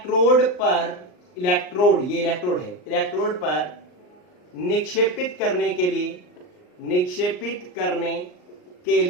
पर, ये इलेक्ट्रोड है, इलेक्ट्रोड पर निक्षेपित करने के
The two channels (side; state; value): right; late; 39 ms